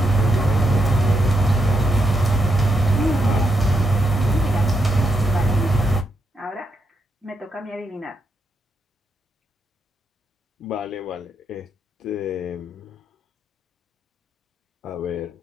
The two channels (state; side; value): normal; both; correlation 0.80